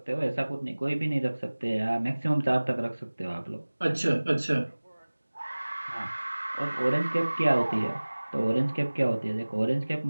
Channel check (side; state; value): both; inverted; correlation -1.00